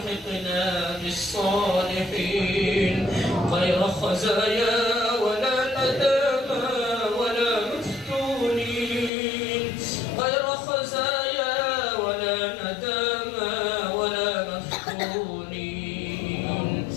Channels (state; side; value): drops out; right; at 9.1 s